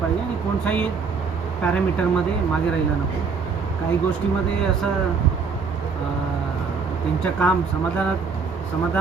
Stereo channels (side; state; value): left; quieter; 5.3 dB